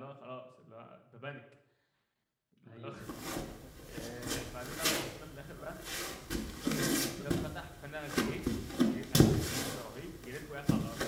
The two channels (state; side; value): identical; both; correlation 1.00